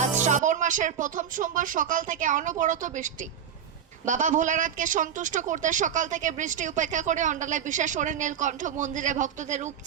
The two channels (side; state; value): left; quieter; 8.5 dB